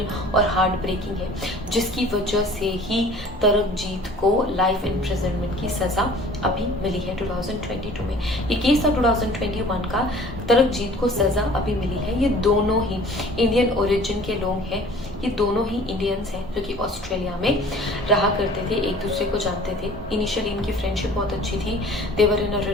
और हार्ट ब्रेकिंग है, जिसकी वजह से ही तरकजीत को लाइफ इम्प्रिजनमेंट की सज़ा अभी मिली है 2022 में। ये केस था 2021 का, तरकजीत को सज़ा अभी मिली है। ये दोनों ही इंडियन ओरिजिन के लोग हैं, ये दोनों ही इंडियंस हैं जो कि ऑस्ट्रेलिया में रहा करते थे, एक दूसरे को जानते थे। इनिशियली इनकी फ्रेंडशिप बहुत अच्छी थी, देवर इन अ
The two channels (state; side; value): normal; both; correlation 0.48